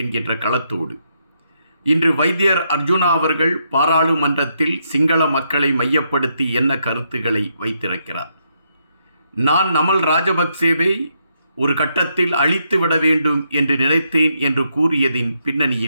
என்கின்ற களத்தோடு இன்று வைத்தியர் அர்ஜுனா அவர்கள் பாராளுமன்றத்தில் சிங்கள மக்களை மையப்படுத்தி என்ன கருத்துக்களை வைத்திருக்கிறார். நான் நமல் ராஜபக்சேவை ஒரு கட்டத்தில் அழித்து விட வேண்டும் என்று நினைத்தேன் என்று கூறியதின்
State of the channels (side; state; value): both; inverted; correlation -0.78